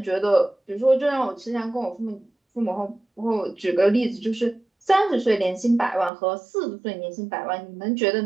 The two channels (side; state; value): left; drops out; at 6.1 s